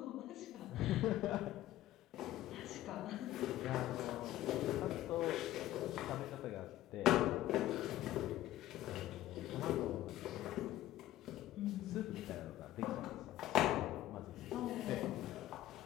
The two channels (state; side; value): quieter; right; 14.4 dB